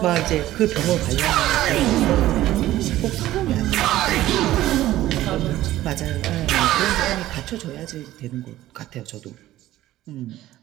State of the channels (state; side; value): quieter; left; 14.8 dB